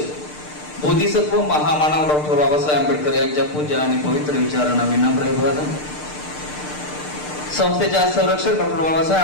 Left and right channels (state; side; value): late; right; 6.7 ms